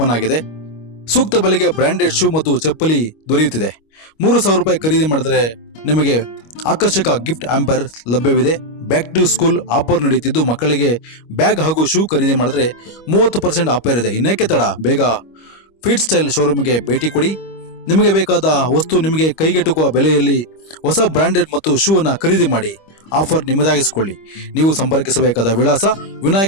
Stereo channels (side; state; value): right; late; 25 ms